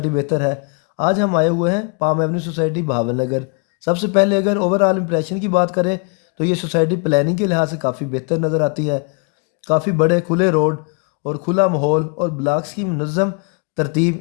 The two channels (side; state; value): right; quieter; 34.2 dB